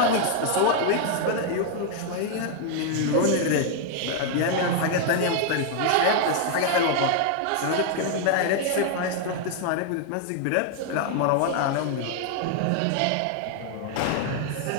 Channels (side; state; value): both; different; correlation 0.00